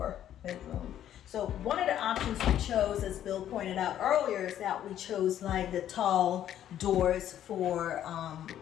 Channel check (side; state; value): right; quieter; 11.1 dB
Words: bedroom. So one of the options we chose, as Bill pointed out earlier, is that we chose like the tall doors for